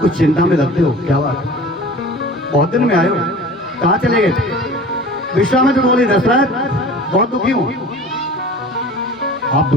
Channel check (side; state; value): both; normal; correlation 0.41